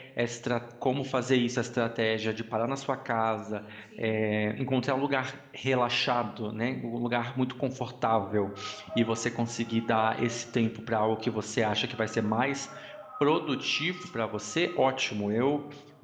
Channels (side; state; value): both; identical; correlation 1.00